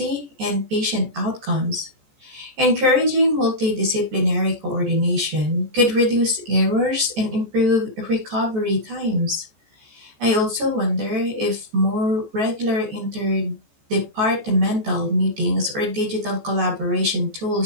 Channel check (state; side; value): late; left; 14 ms